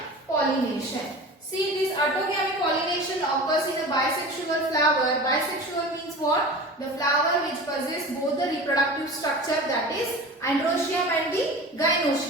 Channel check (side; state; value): both; normal; correlation 0.35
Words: See, this autogamy pollination occurs in a bisexual flower. Bisexual means what? The flower which possesses both the reproductive structure, that is androecium and the